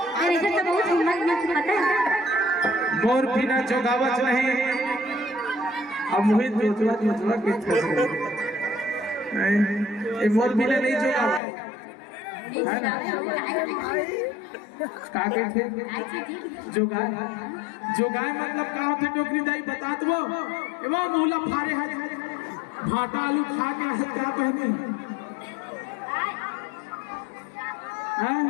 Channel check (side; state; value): right; drops out; at 11.4 s